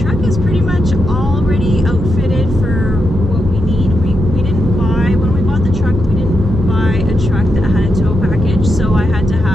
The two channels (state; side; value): normal; both; correlation 0.85